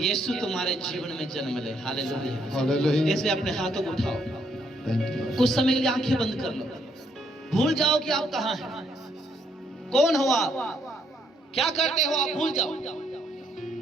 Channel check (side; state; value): both; normal; correlation 0.72